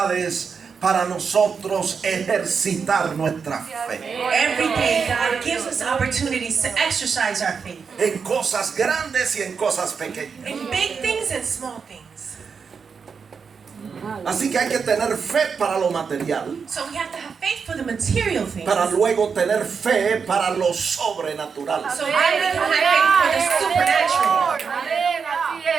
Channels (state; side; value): quieter; left; 5.9 dB